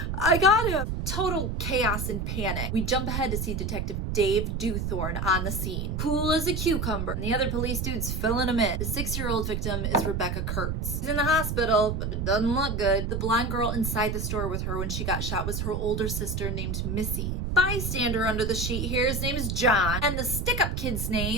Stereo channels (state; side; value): noise; right; rumble, 2 dB below the sound